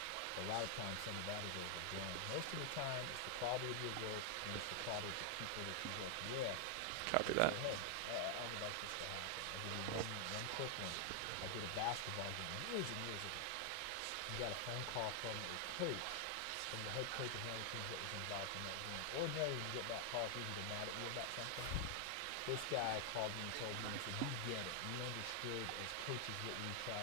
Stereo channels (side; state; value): both; different; correlation 0.00